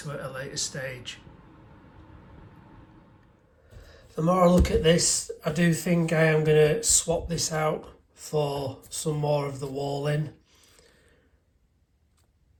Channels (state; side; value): identical; both; correlation 1.00